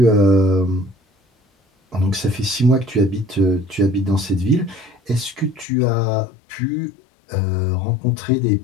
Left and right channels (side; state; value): right; drops out; at 5.7 s